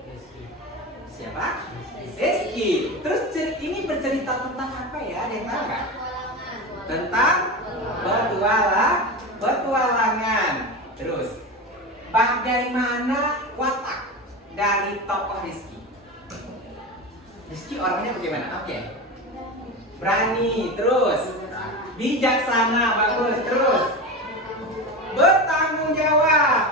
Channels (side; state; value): both; normal; correlation 0.24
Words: Siapa? Rizky. Terus ini bercerita tentang apa ya? Ada yang tahu nggak? Tentang petualangan. Terus bagaimana watak dari tokoh Rizky? Rizky orangnya bagaimana? Oke. Berani, terus bijaksana, bagus, terus bertanggung jawab.